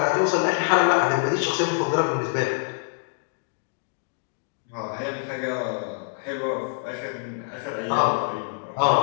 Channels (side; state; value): right; silent; 62 dB below the other